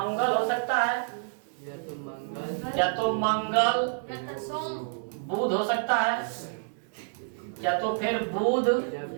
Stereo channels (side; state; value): left; silent; digital silence